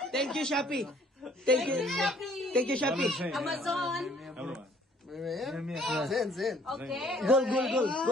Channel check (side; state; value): both; normal; correlation 0.59